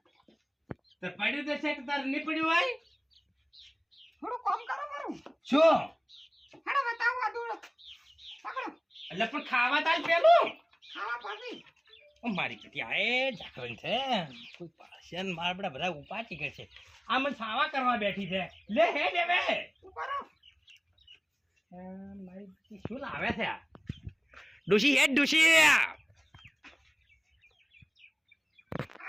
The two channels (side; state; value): both; identical; correlation 1.00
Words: તો પડ્યું તો છે કે તાર નહીં પડ્યું હોય થોડું કામ કરો મારું શું હેડો બતાવો આ દૂર પકડો એટલે પણ ખાવા તાર પેલું ખાવા પાડી ઓ મારી પેટી આ એ ઢાકણ છે કોઈ પાસે ને મારા બધા ઉપાટી કે છે આ મને ખાવા કરવા બેઠી છે લે હે દેવે કરો મારી પેટી શું લાવે છે આ ડોશી હેડ ડોશી